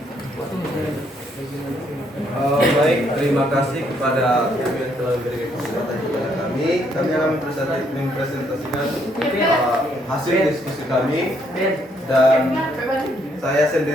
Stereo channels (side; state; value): both; normal; correlation 0.71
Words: Baik, terima kasih kepada kami yang telah memberikan kesempatan kepada kami. Kami akan mempresentasikan hasil diskusi kami, dan saya